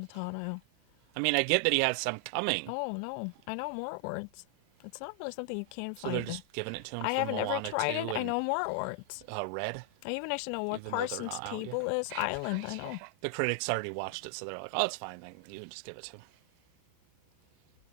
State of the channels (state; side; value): different; both; correlation 0.00